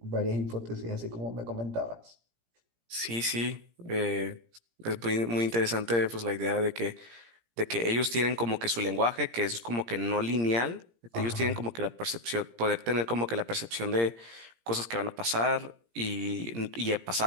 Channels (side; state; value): left; late; 17 ms